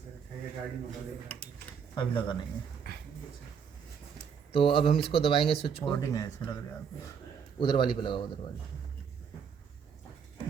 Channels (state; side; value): quieter; left; 7.0 dB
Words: अभी लगा नहीं है। तो अब हम इसको दबाएंगे स्विच को, कोडिंग है ऐसे लग रहा है आपको। उधर वाली पे लगाओ, उधर वाली।